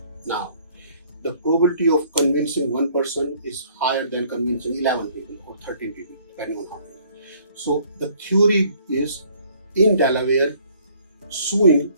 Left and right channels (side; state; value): both; inverted; correlation -0.59